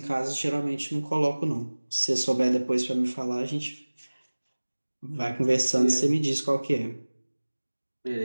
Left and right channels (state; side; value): inverted; both; correlation -1.00